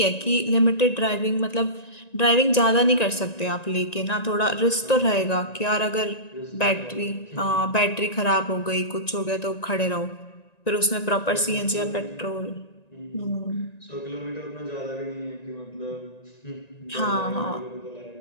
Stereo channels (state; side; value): late; right; 1.9 ms